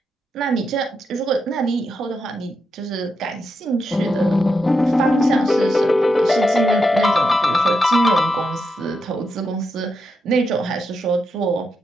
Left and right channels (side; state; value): both; normal; correlation 0.84